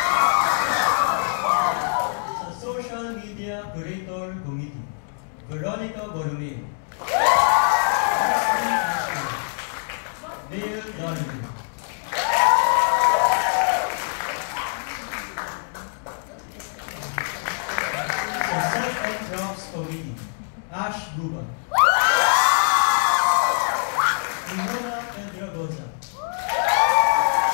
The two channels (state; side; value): silent; right; digital silence